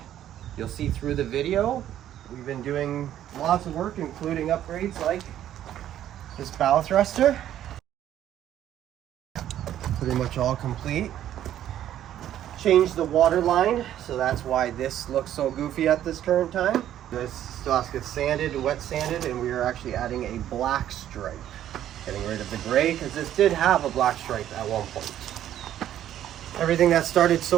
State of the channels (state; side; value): quieter; left; 11.5 dB